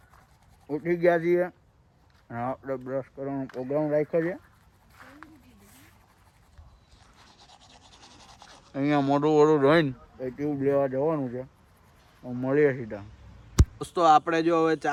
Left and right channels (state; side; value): identical; both; correlation 1.00